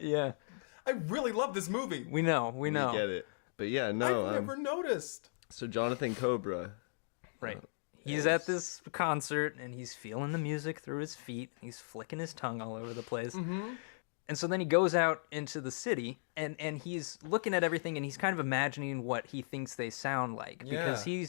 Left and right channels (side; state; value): right; silent; digital silence